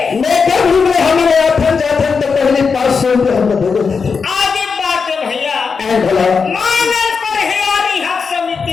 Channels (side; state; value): right; quieter; 5.4 dB